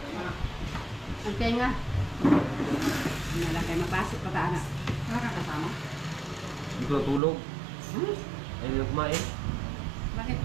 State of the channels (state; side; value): drops out; left; at 7.2 s